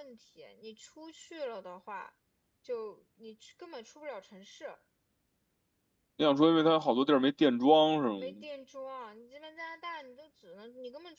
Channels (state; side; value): identical; both; correlation 1.00